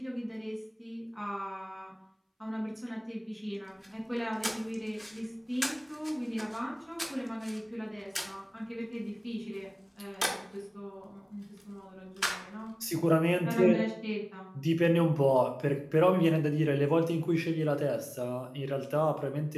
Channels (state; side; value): identical; both; correlation 1.00